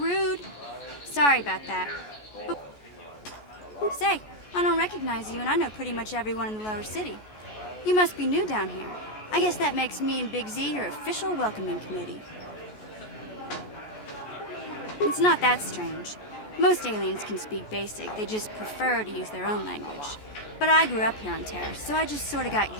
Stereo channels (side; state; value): right; late; 14 ms